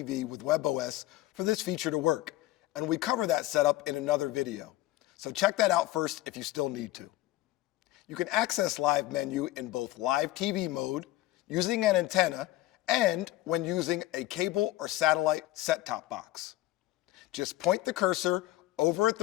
with WebOS for this feature to work, and we cover that setup in another video. So check that out first if you still need to. You can access Live Menu in both live TV mode, using an antenna, and when using a cable or satellite set-top box. Just point the cursor over at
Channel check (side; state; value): right; quieter; 16.4 dB